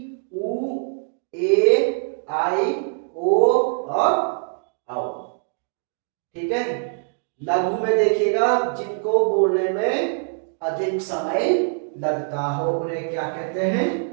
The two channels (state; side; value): silent; left; digital silence